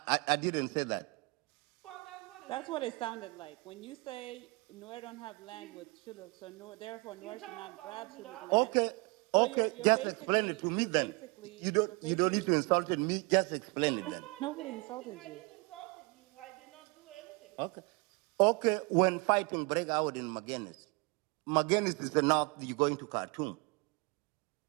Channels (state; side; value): quieter; left; 28.2 dB